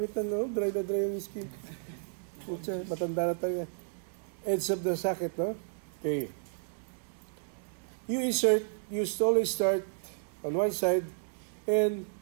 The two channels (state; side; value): silent; left; digital silence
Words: no? Dry na dry yung skin. Matanda na tayo. Edge of the socket, no? Okay. You always start on one side and